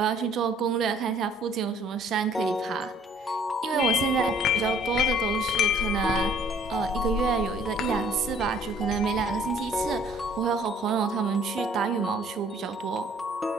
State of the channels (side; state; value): both; normal; correlation 0.58